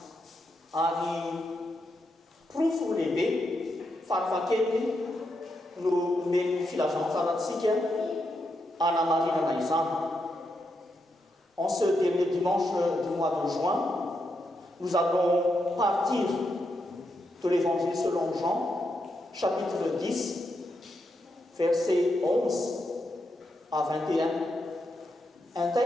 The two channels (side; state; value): both; normal; correlation 0.83